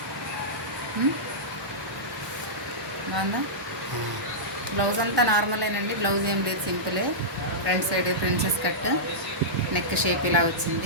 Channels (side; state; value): both; normal; correlation -0.14